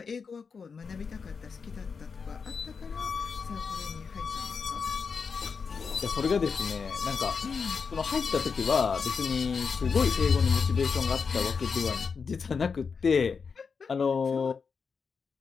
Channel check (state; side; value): quieter; right; 5.5 dB